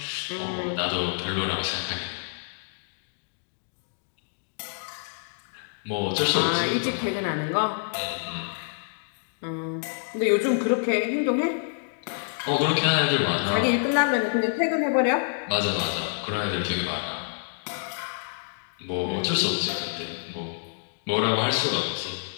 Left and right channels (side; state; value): right; silent; digital silence